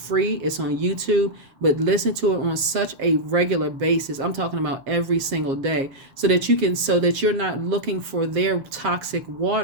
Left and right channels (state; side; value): late; left; 7.4 ms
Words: It's on YouTube, but listen to it on such a regular basis. I'm talking about every single day, so that you're not looking for their toxic